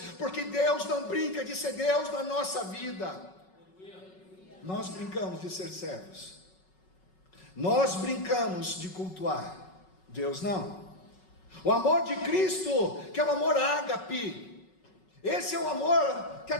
porque Deus não brinca de ser Deus na nossa vida. Nós brincamos de ser servos, nós brincamos de cultuar, Deus não. O amor de Cristo, que é o amor ágape, esse é o amor que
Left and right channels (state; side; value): late; right; 5.4 ms